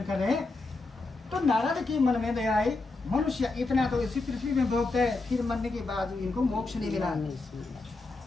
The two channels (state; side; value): quieter; right; 3.4 dB